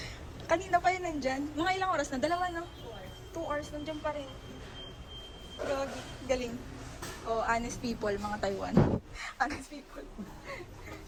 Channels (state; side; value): identical; both; correlation 1.00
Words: kanina pa yun nandyan. Mga ilang oras na? Dalawa no? 2 hours nandyan pa rin. Grabe, galing. Oh, honest people, mga Taiwan. Honest people.